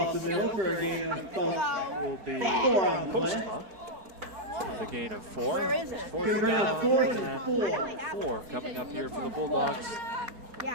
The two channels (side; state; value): left; late; 4.7 ms